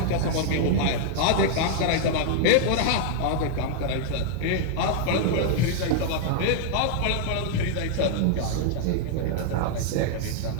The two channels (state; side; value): different; both; correlation 0.00